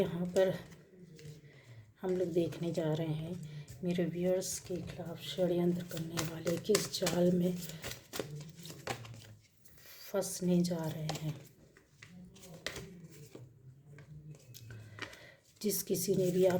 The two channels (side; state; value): both; identical; correlation 1.00